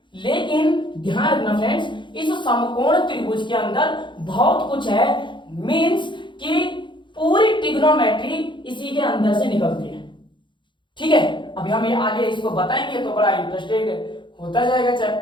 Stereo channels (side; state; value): right; late; 0.23 ms